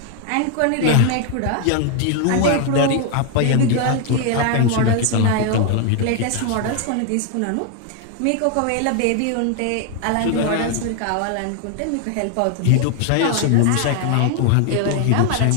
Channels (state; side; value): different; both; correlation 0.00